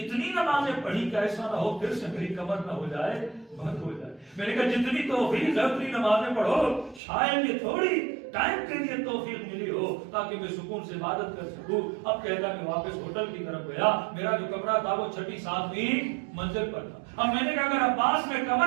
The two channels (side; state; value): left; drops out; at 7.0 s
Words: نمازیں پڑھی کہ ایسا نہ ہو پھر سے میری کمر نہ ہو جائے، بند ہو جائے. میں نے کہا جتنی توفیق ہے اتنی نمازیں پڑھو، شاید یہ تھوڑی ٹائم کے لیے توفیق ملی ہو تاکہ میں سکون سے عبادت کر سکوں. اب کہتا میں واپس ہوٹل کی طرف گیا، میرا جو کمرہ تھا وہ 6 7ویں منزل پر تھا. اب میں نے کہا اگر عباس میں